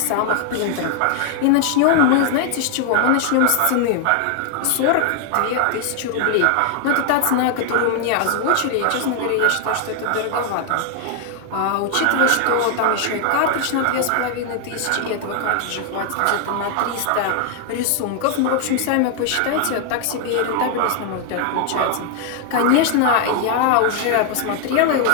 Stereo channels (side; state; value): both; different; correlation 0.00